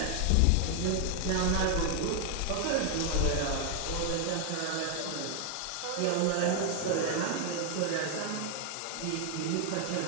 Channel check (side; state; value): both; different; correlation 0.00